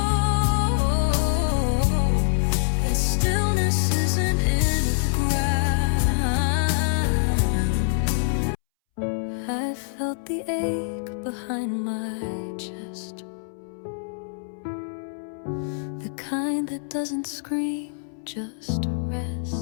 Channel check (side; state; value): right; silent; 62 dB below the other